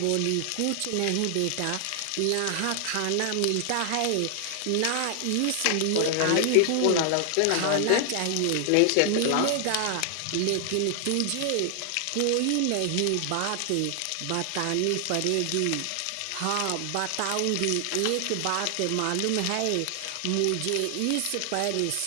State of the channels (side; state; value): both; different; correlation 0.00